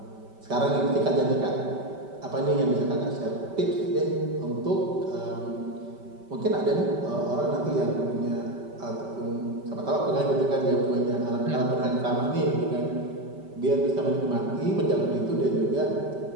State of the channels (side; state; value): left; late; 5.2 ms